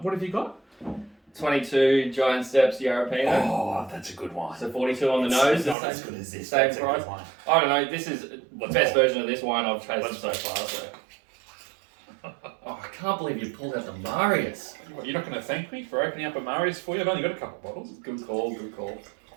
What have you got? 22 Giant Steps Yarra Valley. Oh, that's a good one. So 42 on the nose. It's not as good as this. Same That's a price. good one. I don't know. This is the best version of this wine I've tasted so far. So. Oh, I can't believe you pulled out the Marius. You're not going to thank me for opening up a Marius for you? I've only got a couple bottles. Good call.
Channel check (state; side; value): drops out; left; at 5.8 s